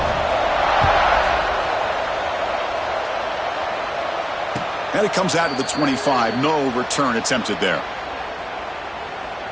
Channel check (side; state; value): both; identical; correlation 1.00